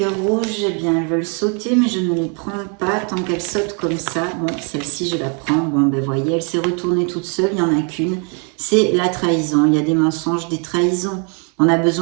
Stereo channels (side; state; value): left; quieter; 37.6 dB